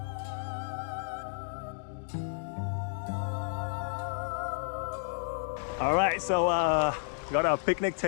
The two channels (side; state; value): right; silent; digital silence